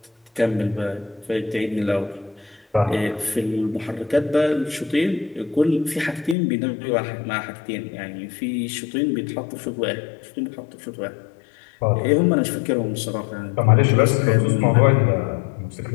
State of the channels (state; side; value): drops out; right; at 6.4 s